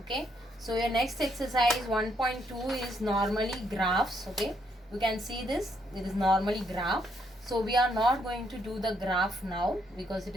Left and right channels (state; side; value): normal; both; correlation 0.74